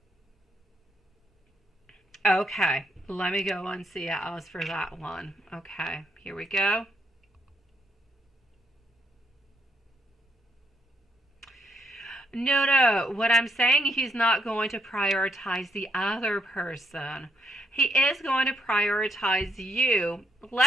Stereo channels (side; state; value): both; normal; correlation 0.75